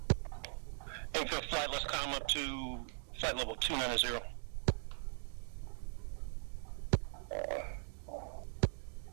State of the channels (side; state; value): left; silent; digital silence